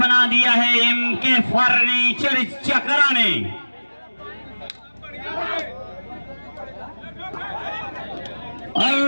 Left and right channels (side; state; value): both; inverted; correlation -1.00